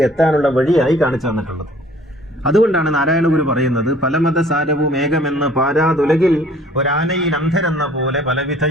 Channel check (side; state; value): both; normal; correlation 0.54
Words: എത്താനുള്ള വഴിയായി കാണിച്ചു തന്നിട്ടുള്ളത്. അതുകൊണ്ടാണ് നാരായണ ഗുരു പറയുന്നത്, പലമത സാരവും ഏകമെന്ന് പാരാതുലകിൽ ഒരാനയിൽ അന്ധരെന്ന പോലെ പലവിധ